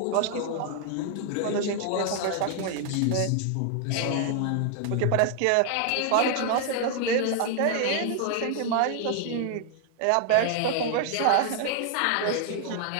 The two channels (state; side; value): different; both; correlation 0.00